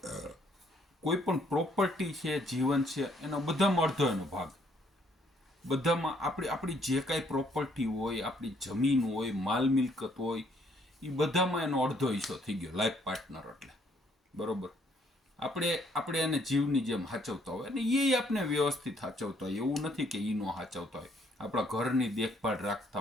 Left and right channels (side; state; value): both; normal; correlation 0.67